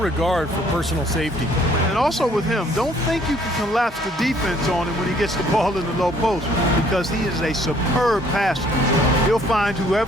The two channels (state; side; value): normal; both; correlation 0.61